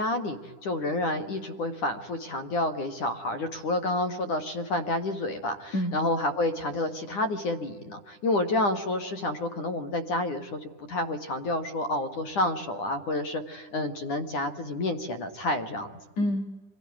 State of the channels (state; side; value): late; right; 10 ms